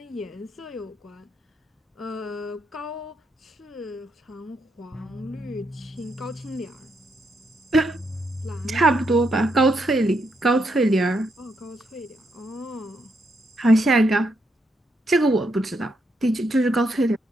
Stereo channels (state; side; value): normal; both; correlation 0.79